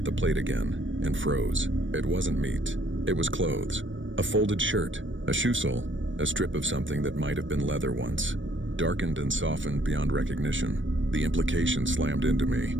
the plate again and froze. It wasn't meat. It was clothes. A folded shirt, a shoe sole, a strip of something that might have been leather once. Darkened and softened beyond recognition. The implication slammed into me.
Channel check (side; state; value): left; late; 0.56 ms